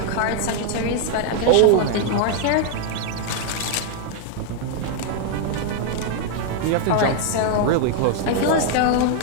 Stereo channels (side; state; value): both; different; correlation 0.00